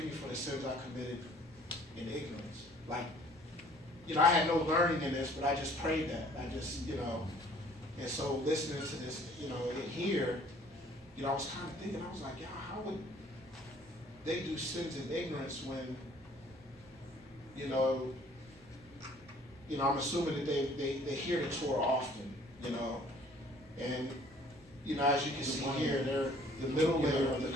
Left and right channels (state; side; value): normal; both; correlation 0.56